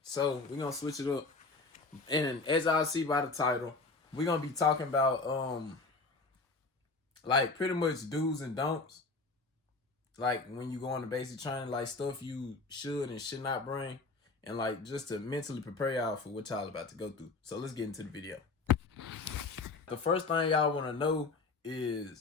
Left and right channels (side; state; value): right; quieter; 3.8 dB